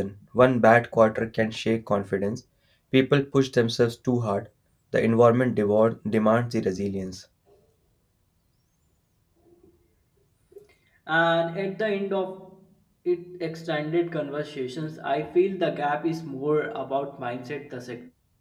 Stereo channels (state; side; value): identical; both; correlation 1.00